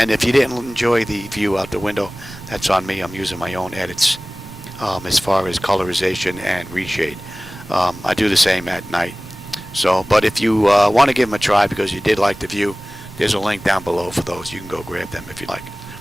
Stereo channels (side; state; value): both; normal; correlation 0.98